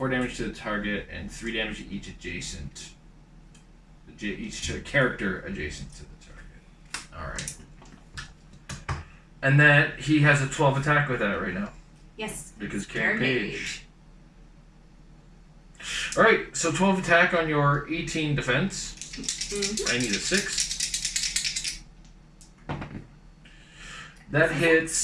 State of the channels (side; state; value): both; identical; correlation 1.00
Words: damage to the target and 3 damage to each adjacent. Each character adjacent to the target. Alright. And that he has a 12 attack with that right now. Yes. Because Karen Page. Alright, so 12 attack on your 18 defense. I need a 6. That